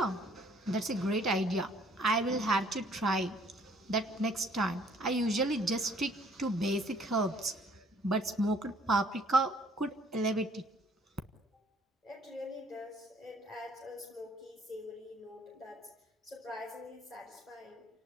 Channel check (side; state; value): both; normal; correlation 0.60